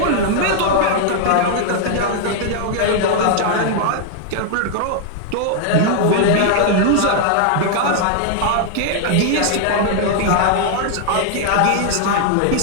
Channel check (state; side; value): different; both; correlation 0.00